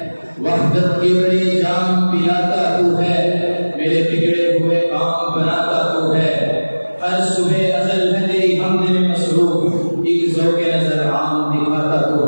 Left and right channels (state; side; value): inverted; both; correlation -1.00